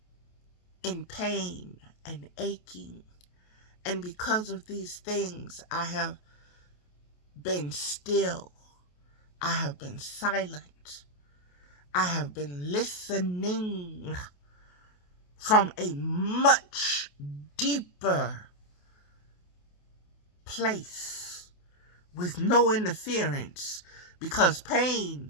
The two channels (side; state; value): right; late; 28 ms